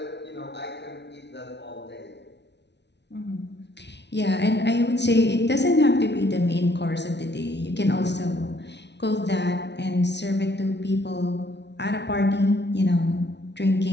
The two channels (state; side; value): late; right; 0.50 ms